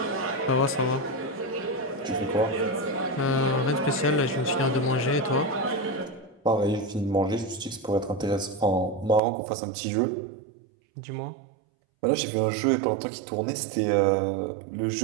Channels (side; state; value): left; drops out; at 9.2 s